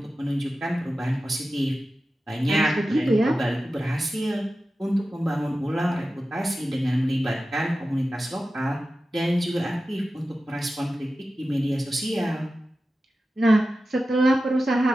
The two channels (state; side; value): normal; both; correlation 0.93